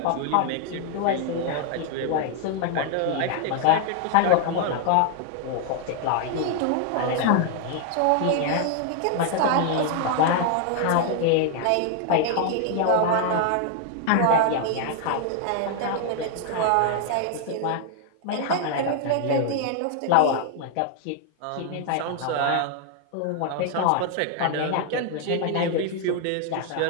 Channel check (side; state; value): both; different; correlation 0.00